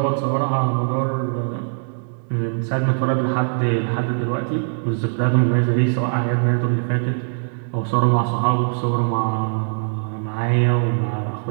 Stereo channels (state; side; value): silent; left; digital silence